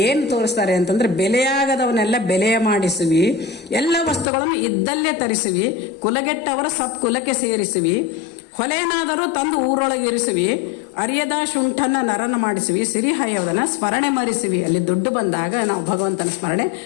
ಏನು ತೋರಿಸ್ತಾರೆ ಅಂತಂದ್ರೆ, ಬೆಲೆಯಾಗದವನ್ನೆಲ್ಲ ಬೆಲೆಯ ಮಾಡಿಸುವಿ, ಎಲ್ಲ ವಸ್ತುಗಳನ್ನು ಇದ್ದಲ್ಲೇ ತರಿಸುವಿ, ಕುಲಗೆಟ್ಟವರ ಸತ್ಕುಲಕ್ಕೆ ಸೇರಿಸುವಿ, ಹೊಲೆನಾದರೂ ತಂದು ಊರೊಳಗಿರಿಸುವಿ, ಅರಿಯದ ಶುಂಠನ ನರನ ಮಾಡಿಸುವಿ, ಸಿರಿಹಯವನ ಸ್ಮರಣೆ ಮರಿಸುವಿ. ಅಲ್ಲಿ ದುಡ್ಡು ಬಂದಾಗ ನಾವು ಭಗವಂತನ ಸ್ಮರಣೆ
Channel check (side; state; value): right; drops out; at 4.2 s